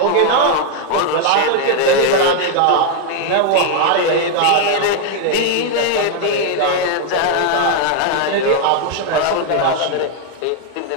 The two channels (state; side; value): different; both; correlation 0.00